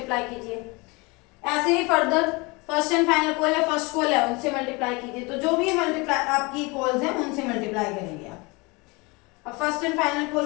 कीजिए। ऐसे ही further first and final call है, फर्स्ट कॉल है, उनसे मल्टीप्लाई कीजिए। तो जो भी मल्टीप्लाई आपकी कॉल्स हैं उनसे मल्टीप्लाई करेंगे आप। अब फर्स्ट एंड फाइनल कॉल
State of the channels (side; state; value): right; quieter; 26.5 dB